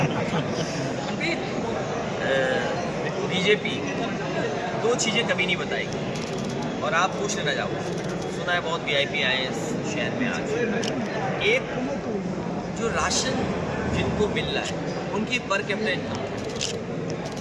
बीजेपी 2 चीज़ें कभी नहीं बताएगी। और आप पूछ लेना जाओ, सुना है बहुत VIP आए हैं इस शहर में आज। एक जो राशन जिनको मिल रहा है उनकी पर कैपिटा इनकम,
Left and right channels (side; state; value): both; identical; correlation 1.00